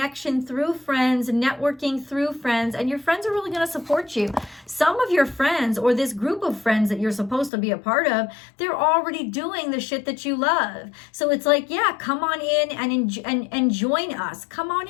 through friends, networking through friends, and your friends are really going to support you. Some of your friends, or this group of friends that you're supposed to be a part of, they're already doing the shit that you love. So it's like, yeah, come on in and join us. Come on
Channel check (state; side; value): drops out; right; at 7.5 s